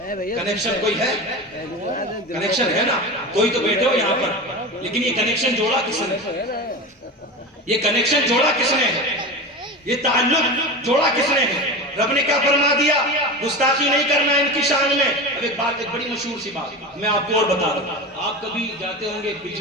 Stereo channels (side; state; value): both; normal; correlation 0.26